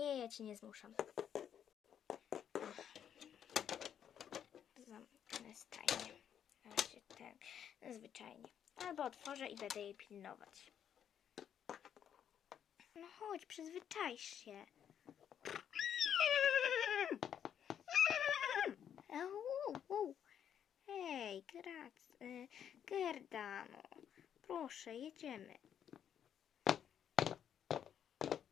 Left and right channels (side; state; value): right; quieter; 9.0 dB